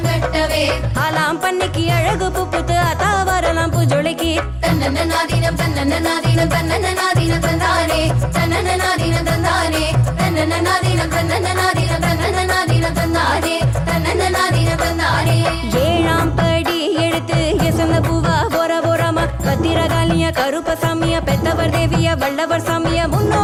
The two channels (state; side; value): identical; both; correlation 1.00